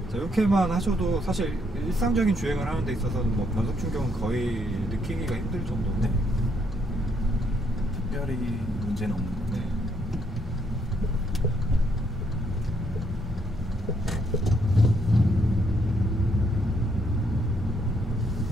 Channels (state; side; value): normal; both; correlation 0.73